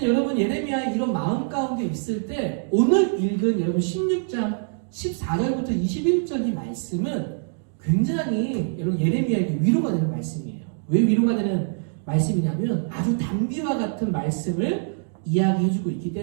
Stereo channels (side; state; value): left; silent; digital silence